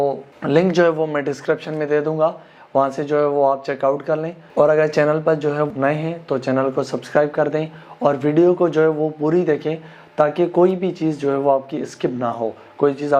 लिंक जो है वो मैं डिस्क्रिप्शन में दे दूँगा, वहाँ से जो है वो आप चेकआउट कर लें। और अगर चैनल पर जो है नए हैं तो चैनल को सब्सक्राइब कर दें और वीडियो को जो है वो पूरी देखें ताकि कोई भी चीज़ जो है वो आपकी स्किप ना हो, कोई चीज़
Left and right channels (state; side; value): identical; both; correlation 1.00